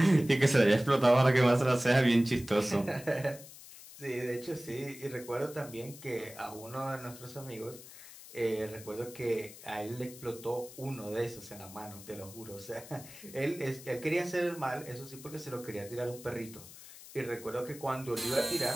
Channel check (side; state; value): left; noise; hiss, 17 dB below the sound